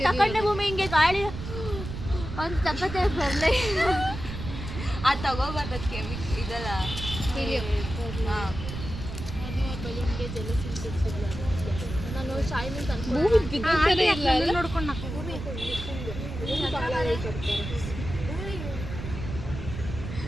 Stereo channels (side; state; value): right; noise; rumble, 8 dB below the sound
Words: ತಕೊಂಡೆ ಭೂಮಿ ಹಿಂಗೆ ಗಾಳಿ ಒಂದು ತಪ್ಪತ್ತೆ ಬರಲೇ ಆ ತಗೋಬಾರ್ದಕ್ಕೆ ಇದಲ್ಲ ಹಾಂ ನಾನು ಶಾಯಿನಿಂದ ಭೂಮಿ ಬಿದ್ದಿರ್ತಾನೆ ಇಲ್ಲ ಅಲ್ಲ? ನೋಡ್ಕೊಂಡು